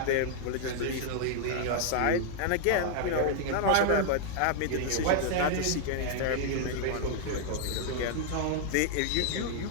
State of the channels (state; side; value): different; both; correlation 0.00